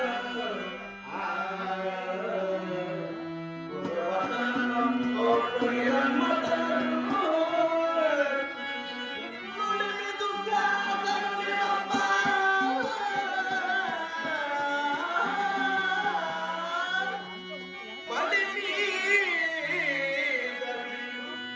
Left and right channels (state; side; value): identical; both; correlation 1.00